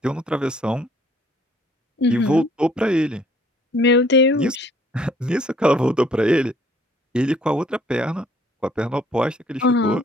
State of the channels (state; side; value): normal; both; correlation 0.60